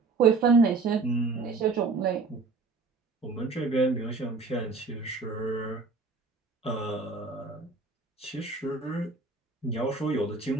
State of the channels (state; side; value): quieter; left; 4.2 dB